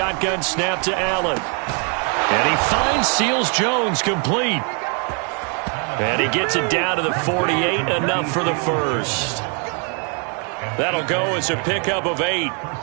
snap to Allen. And he finds Seals-Jones complete. And he gets it down to the 48, enough for the first. That'll go as a pickup of 8.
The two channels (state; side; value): quieter; left; 38.3 dB